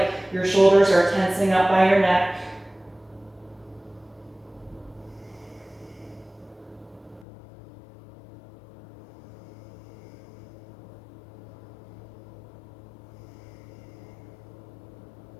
your shoulders are tensing up by your neck.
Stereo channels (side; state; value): right; drops out; at 7.2 s